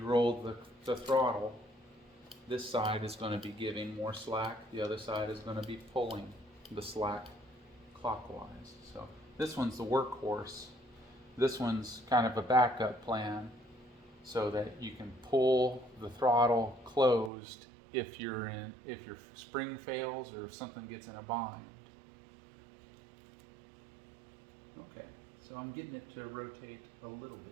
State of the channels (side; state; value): left; drops out; at 17.3 s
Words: roll the throttle, this side is going to be giving more slack, the other side is going to be pulling the slack clockwise. So this one's the workhorse. This one's kind of a backup plan so that you can pull the throttle closed if your spring fails or if something gets in a bind. Okay, so I'm getting it to rotate a little